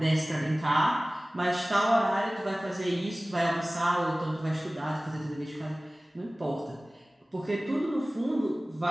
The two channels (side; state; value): both; normal; correlation 0.98